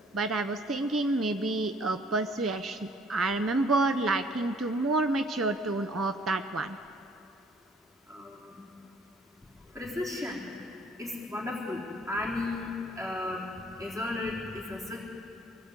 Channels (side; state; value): both; normal; correlation 0.59